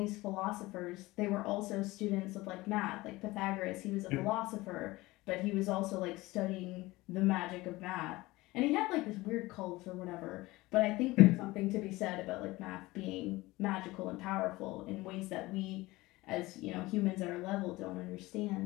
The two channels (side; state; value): right; quieter; 20.1 dB